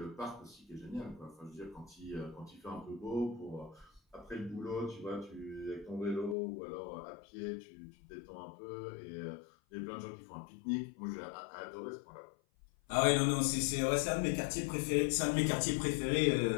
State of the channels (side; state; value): right; drops out; at 6.4 s